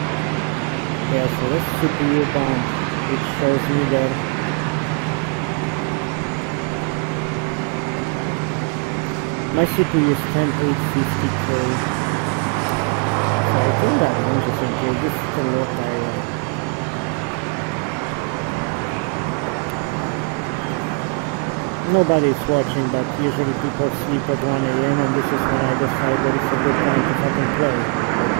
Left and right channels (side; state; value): left; quieter; 37.7 dB